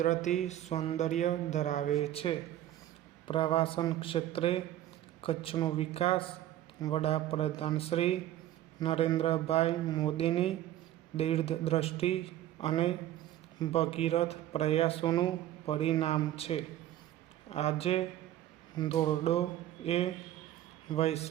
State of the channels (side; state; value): left; quieter; 13.0 dB